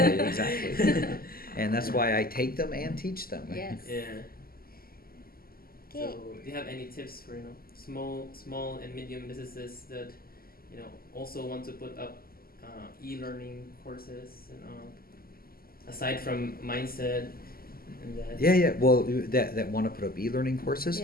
And that's why I take them and teach them. Yes. Yeah. Okay. So do you have any tips for small and medium businesses that also want to put up e-learning courses and aside from mindset and that? Well, that want to put up e-learning courses.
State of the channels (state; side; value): late; right; 0.43 ms